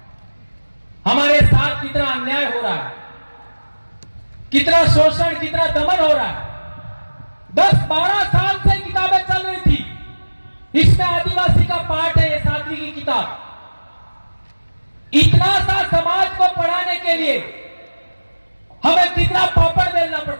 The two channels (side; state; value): both; inverted; correlation -1.00